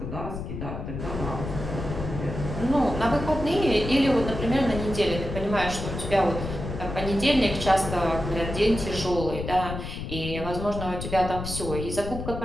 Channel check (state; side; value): noise; left; rumble, 6 dB below the sound